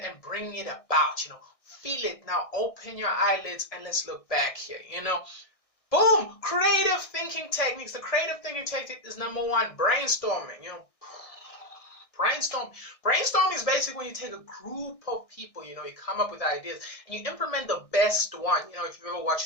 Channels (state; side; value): late; right; 1.6 ms